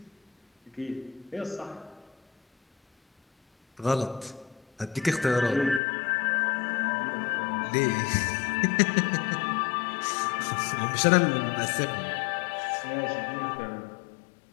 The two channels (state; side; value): drops out; right; at 5.8 s